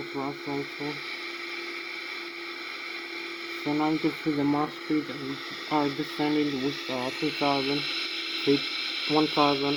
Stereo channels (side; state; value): both; identical; correlation 1.00